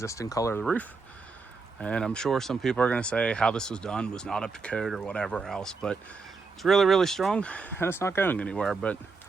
color of the roof. And I'm sure some people are going to say how this was done was not up to code or whatever else, but it's really, really strong and it's not going anywhere. But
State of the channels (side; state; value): left; quieter; 4.4 dB